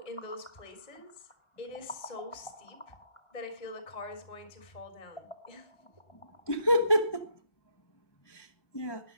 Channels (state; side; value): late; right; 1.2 ms